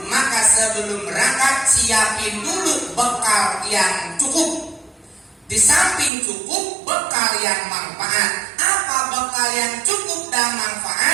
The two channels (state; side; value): drops out; left; at 6.1 s